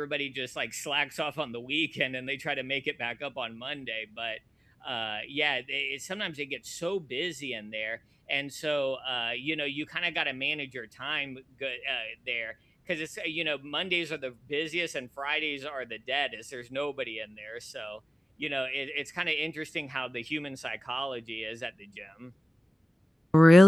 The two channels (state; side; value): normal; both; correlation 0.96